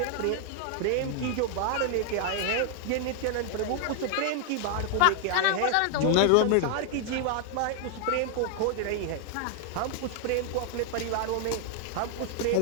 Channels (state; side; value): different; both; correlation 0.00